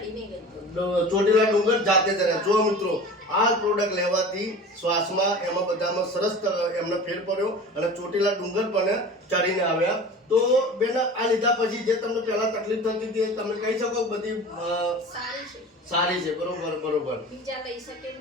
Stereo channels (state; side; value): normal; both; correlation 0.38